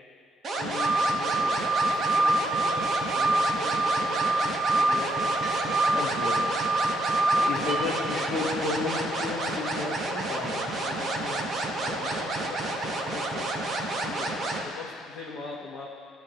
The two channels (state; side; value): normal; both; correlation 0.75